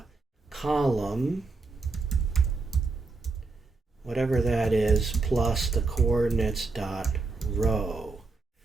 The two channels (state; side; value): quieter; left; 3.9 dB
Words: column, whatever that is, plus the coordinates dot row.